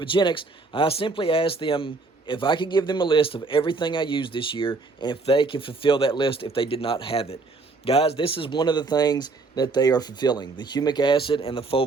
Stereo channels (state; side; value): quieter; left; 3.8 dB